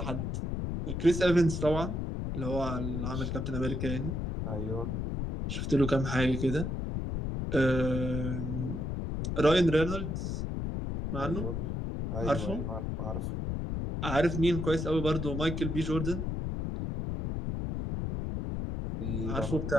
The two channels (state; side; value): noise; left; rumble, 2 dB below the sound